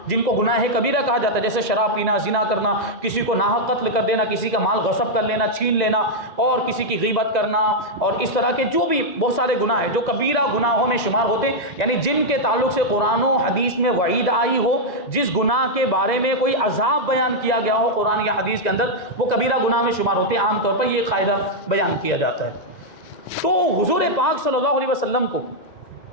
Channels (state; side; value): late; right; 2.0 ms